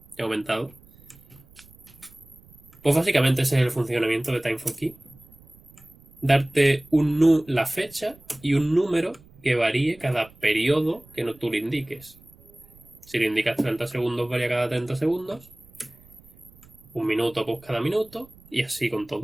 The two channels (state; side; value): noise; right; rumble, 25 dB below the sound